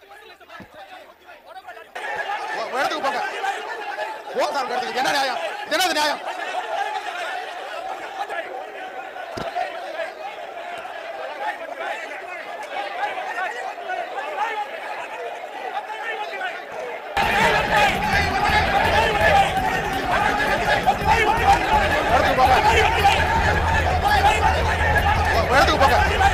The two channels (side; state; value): both; identical; correlation 1.00